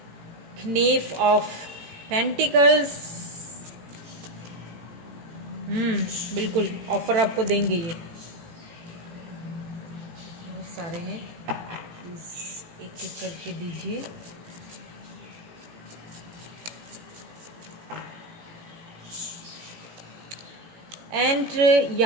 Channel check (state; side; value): late; left; 18 ms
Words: नेफ ऑफ पेंटिकल्स, बिल्कुल ऑफर आपको देंगे ये, बहुत सारे हैं, प्लीज एक एक करके दीजिए। एंड